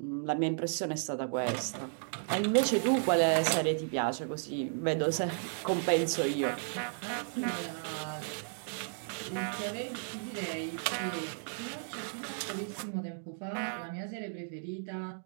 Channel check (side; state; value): left; silent; digital silence